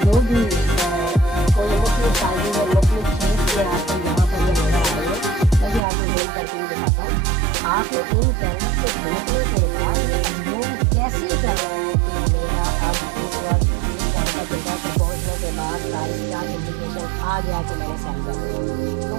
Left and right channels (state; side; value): drops out; left; at 5.8 s